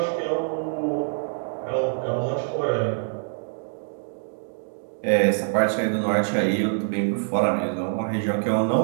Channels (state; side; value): silent; left; digital silence